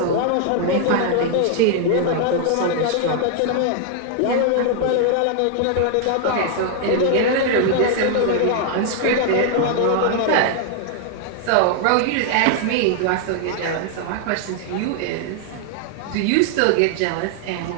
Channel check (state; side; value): different; both; correlation 0.00